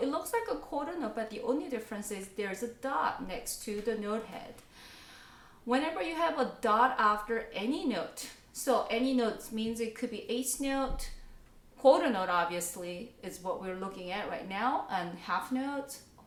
it looks like a quarter note, but the only difference is there's a dot next to the note head. Whenever you have a dot after any note, so any notes means it could be eighth note, quarter note obviously is what we're looking at right now, and half notes,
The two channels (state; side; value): identical; both; correlation 1.00